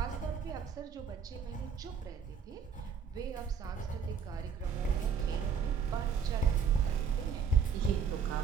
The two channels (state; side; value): quieter; left; 6.4 dB